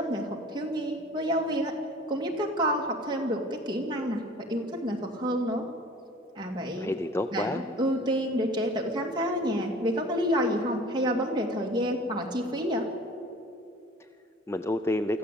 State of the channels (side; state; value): both; normal; correlation 0.46